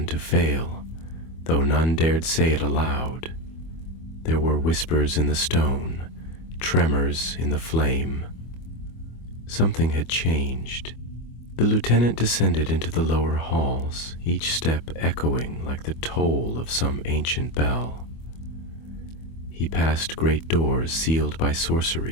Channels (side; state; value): right; late; 25 ms